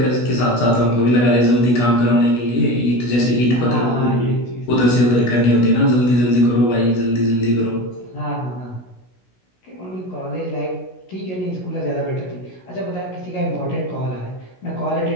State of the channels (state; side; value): late; right; 16 ms